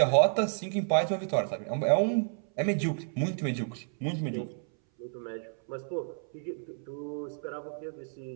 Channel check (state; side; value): silent; left; 57 dB below the other